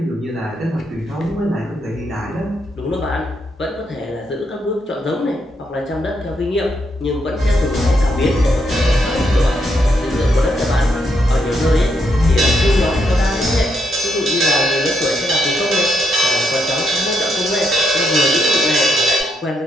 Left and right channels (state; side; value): normal; both; correlation 0.78